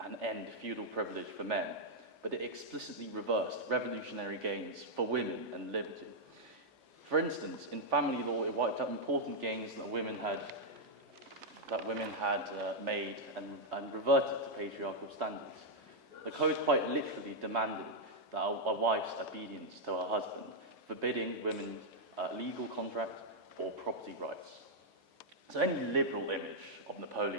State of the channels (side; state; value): both; normal; correlation -0.03